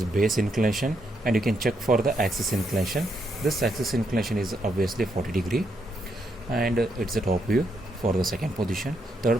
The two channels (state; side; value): normal; both; correlation 0.78